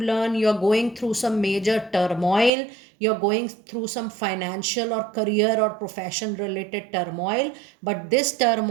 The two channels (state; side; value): drops out; left; at 2.5 s